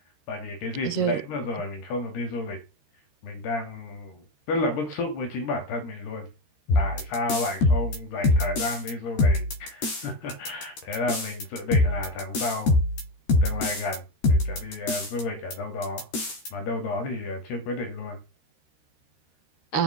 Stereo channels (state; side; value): late; right; 13 ms